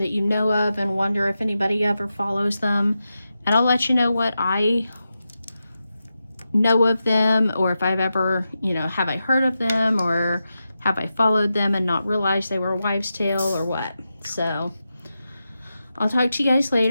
you know of and wonder if anybody ever follows them. And I'll let you know what I know of them, or if I've ever, you know, have I heard of them, or have I followed them and not realized they were a wives' tale, or what. So I'll talk to you guys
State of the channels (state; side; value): inverted; both; correlation -0.90